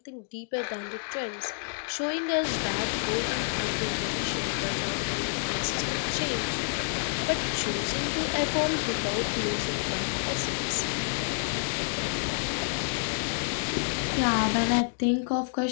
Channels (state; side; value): silent; right; digital silence